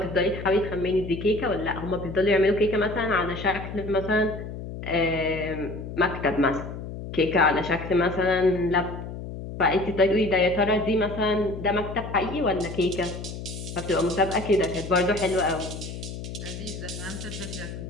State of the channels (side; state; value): left; noise; hum, 9 dB below the sound